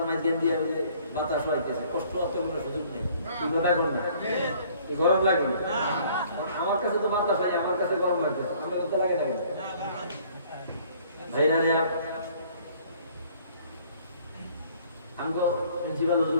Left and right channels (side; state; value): both; inverted; correlation -0.58